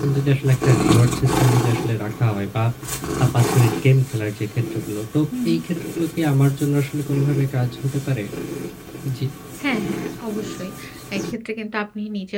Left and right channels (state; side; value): identical; both; correlation 1.00